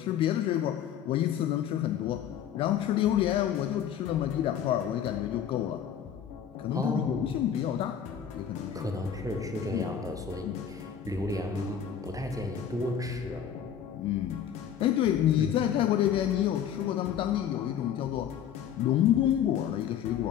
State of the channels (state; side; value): quieter; right; 9.0 dB